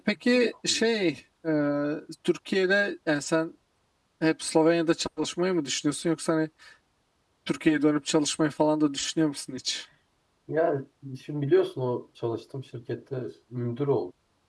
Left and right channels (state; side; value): identical; both; correlation 1.00